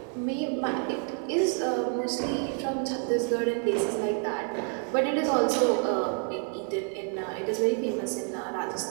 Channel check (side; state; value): left; quieter; 39.0 dB